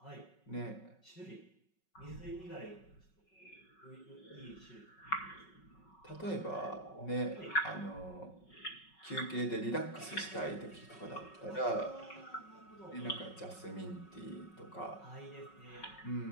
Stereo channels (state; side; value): late; right; 5.4 ms